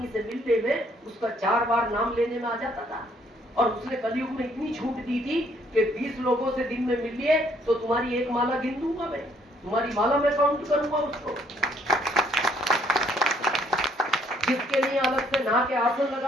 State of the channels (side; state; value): both; normal; correlation 0.66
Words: से मिलने में उसका 4 बार नाम लेने में आ जाता था। और उसने कलयुग में इतनी छूट दी थी कि 20 लोगों से दिन में मिलिए तो तुम्हारी 1 माला गिन दूंगा मैं। तुम्हारी माला में काउंट करूंगा उसको, जिसके लिए अलग से नहा के आसन